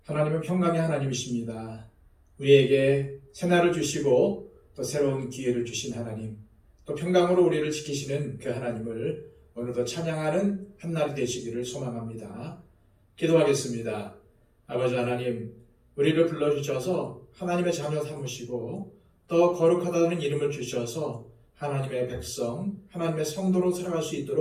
하나님은 평강의 하나님이십니다. 우리에게 새날을 주시고 또 새로운 기회를 주신 하나님, 또 평강으로 우리를 지키시는 그 하나님을 오늘도 찬양하는 한날이 되시기를 소망합니다. 기도하겠습니다. 아버지 하나님, 우리를 불러주셔서 하나님의 자녀 삼으시고 또 거룩하다는 이름을 주셔서 하나님의 백성, 하나님의 성도로 살아갈 수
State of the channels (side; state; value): both; identical; correlation 1.00